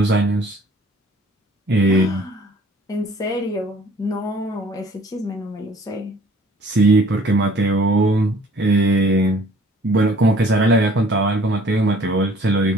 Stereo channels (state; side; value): normal; both; correlation 0.54